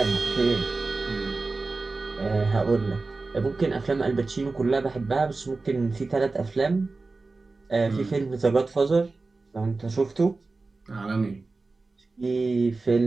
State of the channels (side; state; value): left; quieter; 3.7 dB